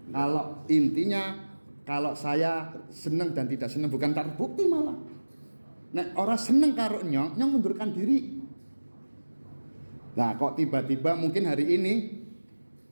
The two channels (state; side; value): inverted; both; correlation -1.00